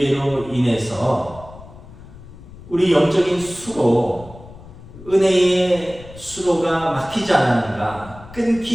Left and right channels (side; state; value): left; noise; rumble, 18 dB below the sound